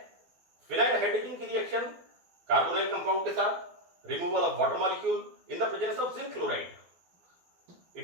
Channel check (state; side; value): late; left; 12 ms